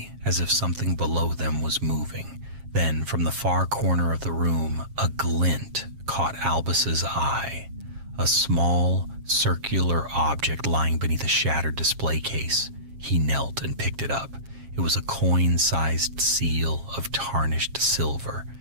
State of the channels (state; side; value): late; left; 7.4 ms